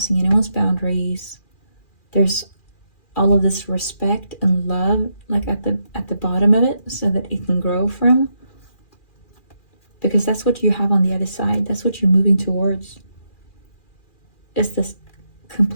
anyone's boundaries. There's all of this respect and love like at the bottom of it, so that it can grow from. Because that's what you have on the other side. That's what you're moving towards. It's this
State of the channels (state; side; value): late; right; 2.4 ms